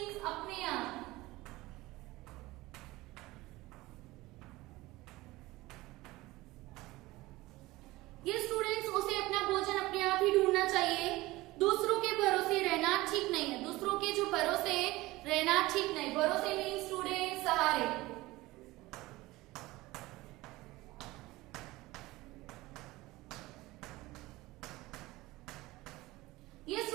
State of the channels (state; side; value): quieter; left; 19.5 dB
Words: अपने आप। ये स्टूडेंट्स उसे अपना भोजन अपने आप ही ढूंढना चाहिए। दूसरों के भरोसे रहना ठीक नहीं है। दूसरों के जो भरोसे रहना ठीक नहीं। भरोसे मीन्स स्टूडेंट सहारे। ये